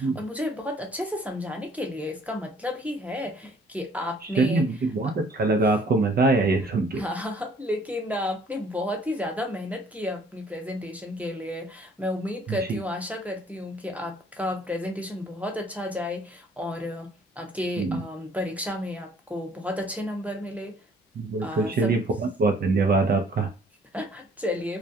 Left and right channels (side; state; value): both; normal; correlation 0.59